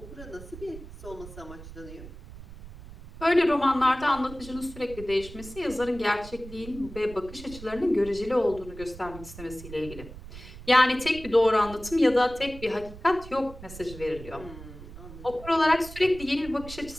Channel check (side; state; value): right; noise; rumble, 15 dB below the sound